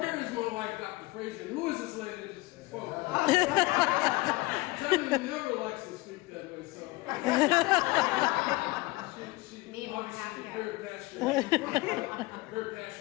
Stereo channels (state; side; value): quieter; right; 21.9 dB